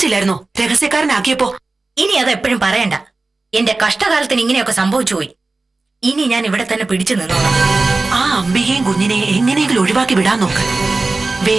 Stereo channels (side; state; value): left; quieter; 3.4 dB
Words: രഹസ്യക്കാരനാക്കിയപ്പോ? ഇനി അത് എപ്പോഴും പറയണ്ട. എന്റെ കഷ്ടകാലത്തിന് ഇങ്ങനെയൊക്കെ സംഭവിച്ചു പോയി. ഇനി ഞാൻ ഇവിടെ തന്നെ പിടിച്ചു നിന്നോളാം. ആ അംബികയും കുഞ്ഞിനെ എങ്ങനെയെങ്കിലും ഒഴിവാക്കി വിടാൻ നോക്ക്.